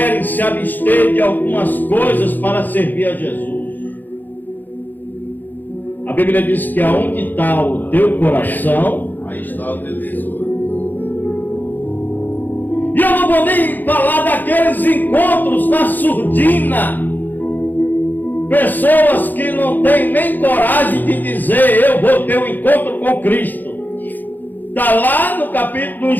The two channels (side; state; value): right; late; 0.086 ms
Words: se abster de algumas coisas para servir a Jesus. A Bíblia diz que aonde está o teu coração, Aí está o teu tesouro. e eu não vou nem falar daqueles encontros na surdina. Pessoas que não têm nem coragem de dizer, eu vou ter um encontro com Cristo. Está lá no capítulo,